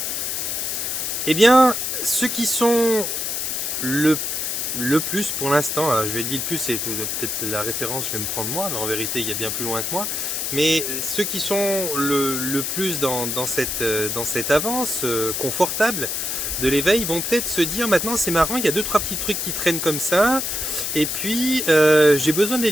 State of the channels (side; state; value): left; noise; hiss, 2 dB below the sound